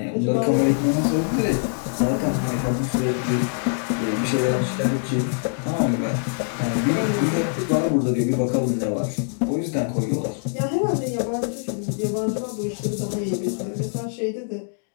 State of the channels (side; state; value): right; silent; 62 dB below the other